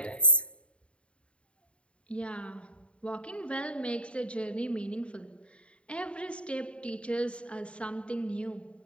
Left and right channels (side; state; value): right; late; 0.059 ms